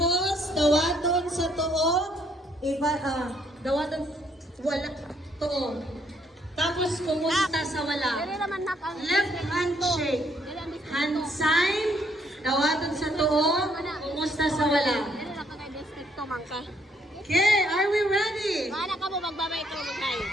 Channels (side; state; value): both; normal; correlation 0.69